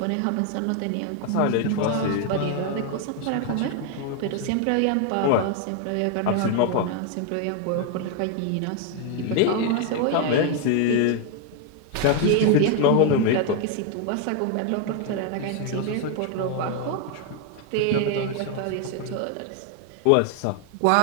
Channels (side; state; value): both; different; correlation 0.01